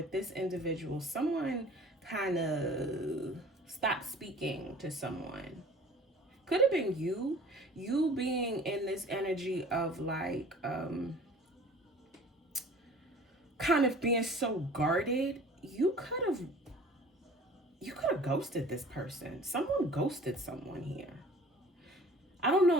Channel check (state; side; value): normal; both; correlation 0.47